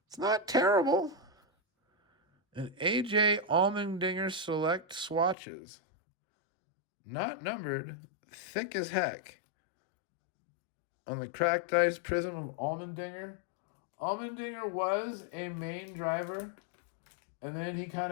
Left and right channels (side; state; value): right; drops out; at 5.4 s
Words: It's not terrible. And AJ Allmendinger Select swatches. Not numbered. Thick as heck. On the cracked ice prism of Allmendinger. Allmendinger was a main driver, and then he kind